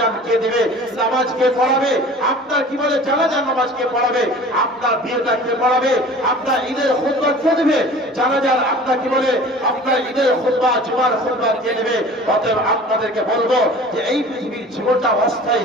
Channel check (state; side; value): normal; both; correlation 0.43